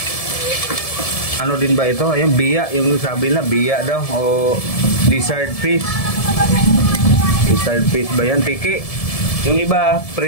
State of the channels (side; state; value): right; late; 1.7 ms